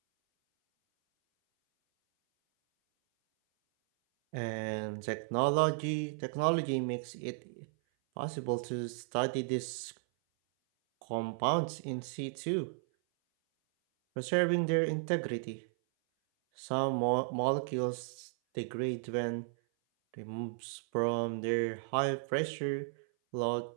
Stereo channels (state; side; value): silent; left; 55 dB below the other